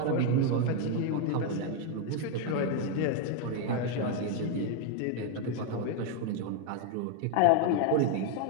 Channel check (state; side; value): different; both; correlation 0.01